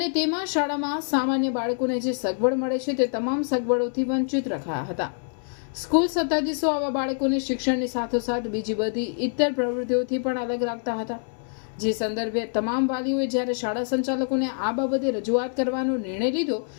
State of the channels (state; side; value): silent; right; 61 dB below the other